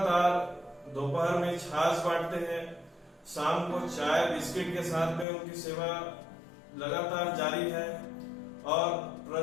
दोपहर में छाछ बांटते हैं, शाम को चाय बिस्किट के साथ में उनकी सेवा लगातार जारी है और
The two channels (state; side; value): drops out; right; at 5.2 s